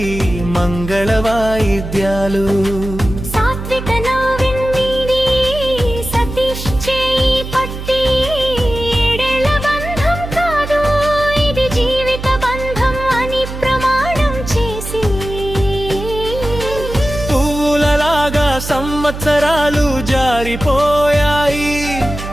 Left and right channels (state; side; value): noise; right; hum, 8 dB below the sound